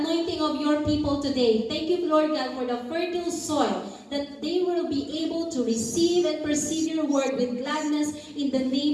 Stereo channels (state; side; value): identical; both; correlation 1.00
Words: anointing of your people today. Thank you, Lord God, for the fertile soil that they will be able to receive and perceive your word with gladness in the